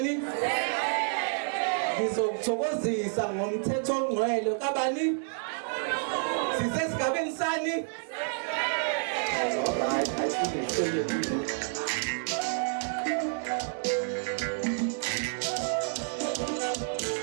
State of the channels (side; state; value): left; silent; digital silence